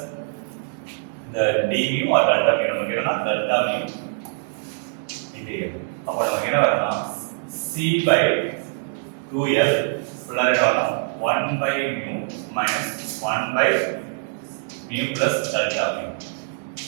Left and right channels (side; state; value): left; silent; digital silence